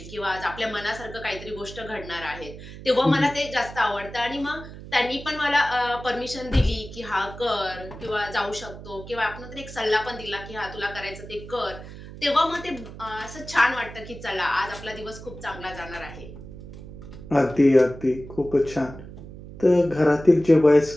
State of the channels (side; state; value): right; noise; hum, 14 dB below the sound